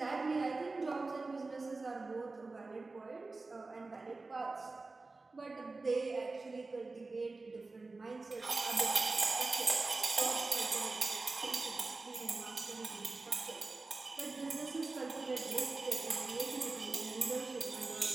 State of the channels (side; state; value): left; quieter; 3.6 dB